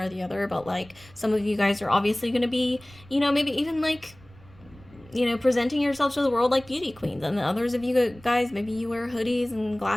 or the other, but like some of you guys are obviously going to be, you know, maybe even like, you know, presenting yourself to the world like beauty queens. And the others of you guys, maybe you wear hoodies and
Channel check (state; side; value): noise; right; rumble, 24 dB below the sound